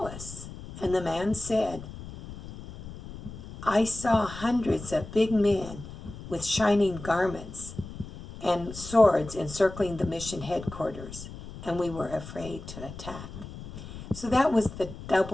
us?" And the man said, "I saw hundreds of big men with shining garments and swords encircling the mission headquarters, and we were afraid to attack." So that was the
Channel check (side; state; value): left; noise; rumble, 13 dB below the sound